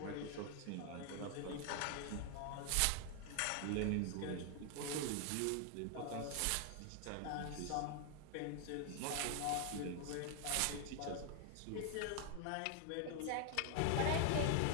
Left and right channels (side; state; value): both; different; correlation 0.00